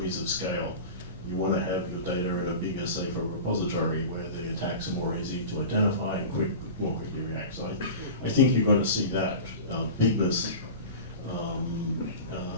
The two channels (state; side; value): inverted; both; correlation -0.33